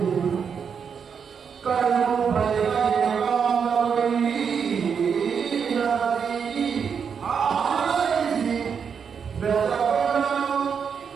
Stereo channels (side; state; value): left; quieter; 6.7 dB